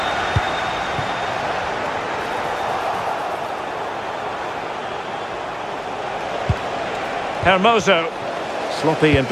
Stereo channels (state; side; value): identical; both; correlation 1.00